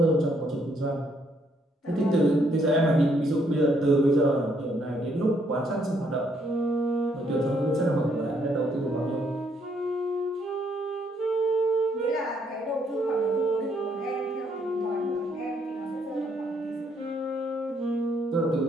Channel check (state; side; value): normal; both; correlation 0.71